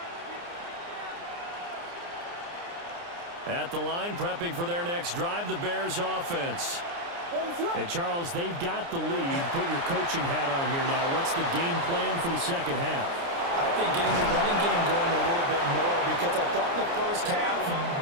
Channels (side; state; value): left; late; 29 ms